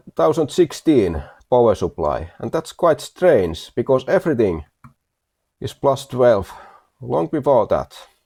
power supply, and that's quite strange because everything is +12 long before that.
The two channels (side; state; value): both; identical; correlation 1.00